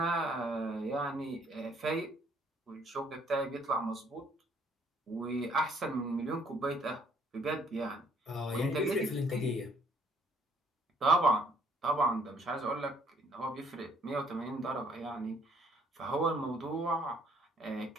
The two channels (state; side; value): normal; both; correlation 0.64